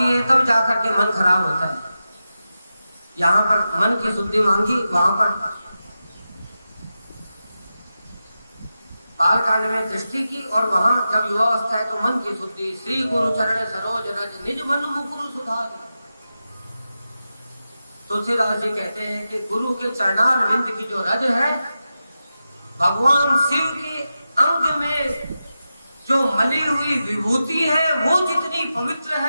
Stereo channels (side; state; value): both; inverted; correlation -0.91